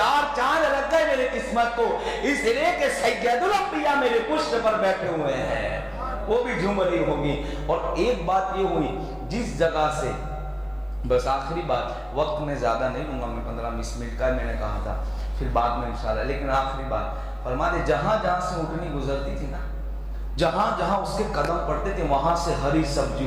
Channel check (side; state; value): both; identical; correlation 1.00